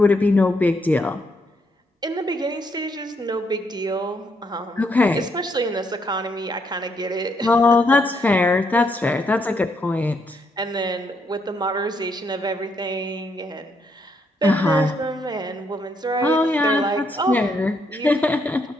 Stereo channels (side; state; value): both; normal; correlation 0.75